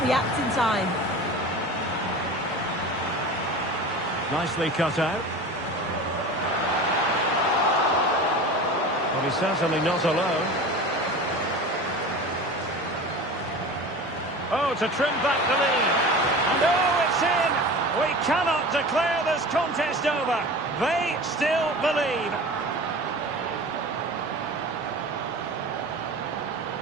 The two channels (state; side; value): normal; both; correlation 0.34